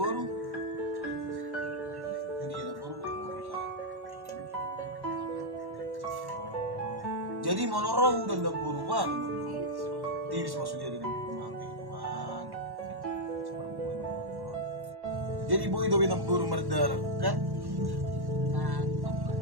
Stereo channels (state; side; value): late; left; 1.1 ms